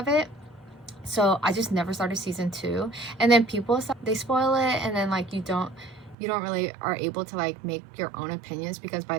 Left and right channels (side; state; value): left; drops out; at 6.2 s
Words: it. So I just never started season 2. And then people, they spoil it, and then like you don't really are able to like make your own opinions because by